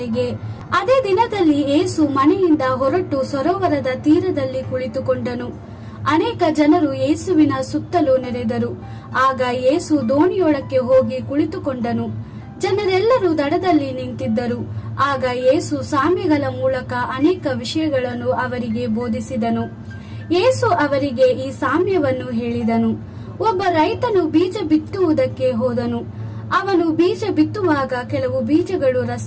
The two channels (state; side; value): identical; both; correlation 1.00